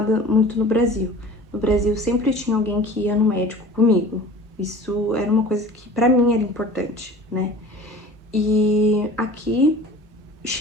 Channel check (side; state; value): both; normal; correlation 0.42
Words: muito no Brasil. No Brasil sempre tinha alguém que ia no médico comigo. Isso era uma coisa que pra mim era importante, né? E aqui